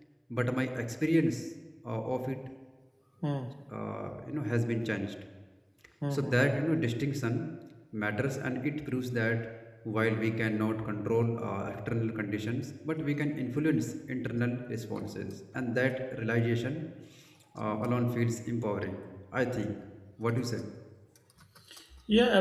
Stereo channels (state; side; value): identical; both; correlation 1.00